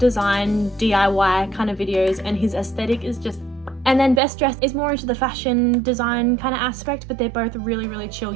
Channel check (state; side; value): drops out; left; at 4.2 s